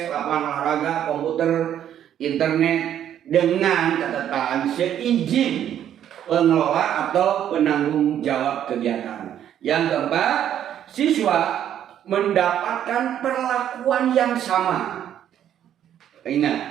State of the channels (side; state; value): left; quieter; 10.3 dB